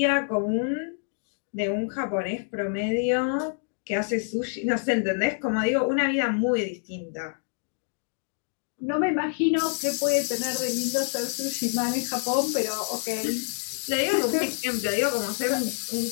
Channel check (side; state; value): right; silent; digital silence